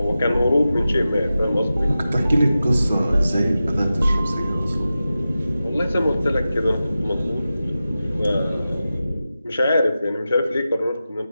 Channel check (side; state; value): both; inverted; correlation -0.93